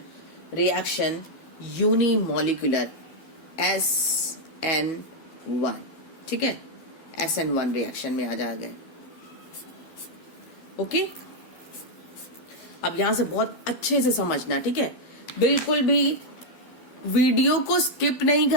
reaction unimolecular SN1। ठीक है, SN1 रिएक्शन में आ जा गए। ओके, अब यहां से बहुत अच्छे से समझना, ठीक है। बिल्कुल भी वीडियो को स्किप नहीं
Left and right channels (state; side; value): late; right; 12 ms